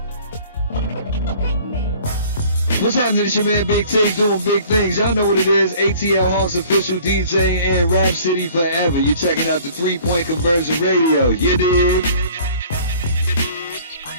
What's happening? It's your man Big T doing big things. Y'all know what it is. ATL Hawks official DJ and Rap City Forever. You're checking out the 3-Point Conversion Radio. You dig?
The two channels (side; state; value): both; inverted; correlation -0.51